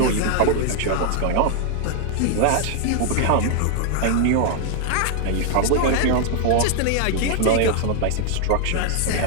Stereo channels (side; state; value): both; different; correlation 0.00